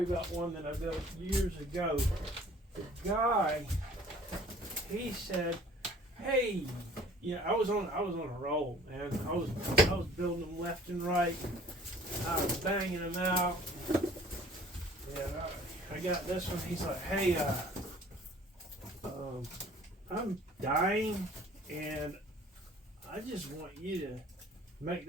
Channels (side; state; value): both; normal; correlation 0.52